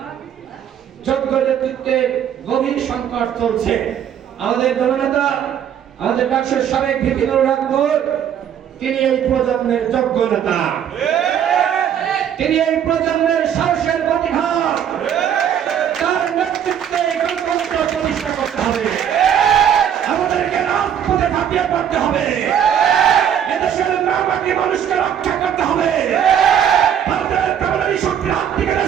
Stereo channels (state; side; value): quieter; left; 9.2 dB